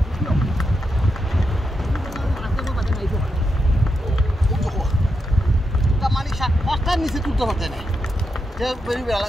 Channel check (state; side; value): normal; both; correlation 0.85